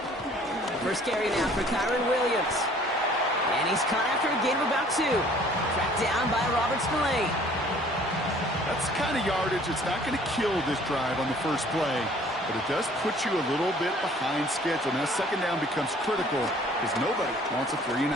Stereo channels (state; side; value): normal; both; correlation 0.54